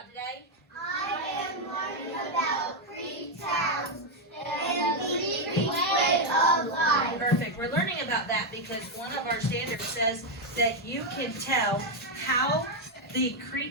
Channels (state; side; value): normal; both; correlation 0.03